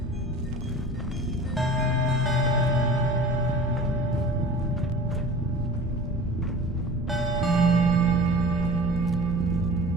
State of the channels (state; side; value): normal; both; correlation 0.40